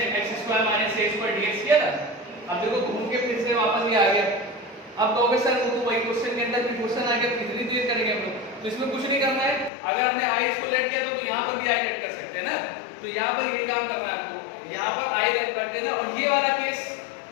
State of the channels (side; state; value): right; drops out; at 9.7 s